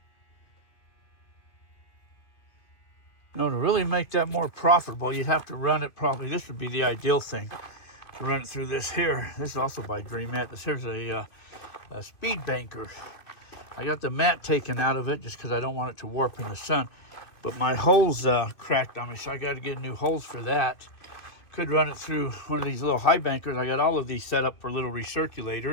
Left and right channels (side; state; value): right; late; 2.2 ms